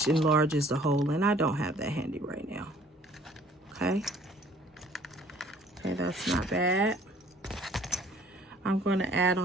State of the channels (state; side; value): normal; both; correlation 0.56